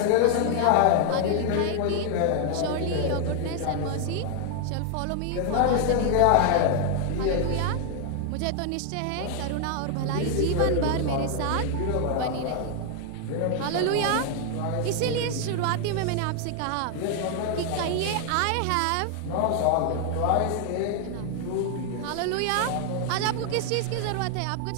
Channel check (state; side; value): different; both; correlation 0.00